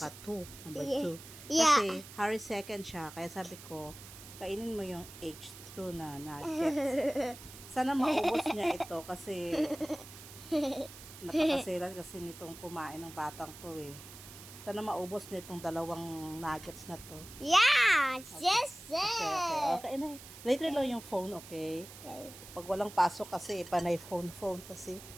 2, number 2. Yeah. Kasi Harry second siya, kaya sabi ko, kainin mo yung H2 na nuggets. Sana maubos niya ito kasi napakasilan kasi nitong kumain ng batang to eh. Sana maubos niya itong dalawang nuggets na to. Yeah. Okay. Yes. Okay na. Later lang yung phone, okay? Okay. Pag walang pasok kasi, panay phone kasi.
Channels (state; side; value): noise; right; hiss, 16 dB below the sound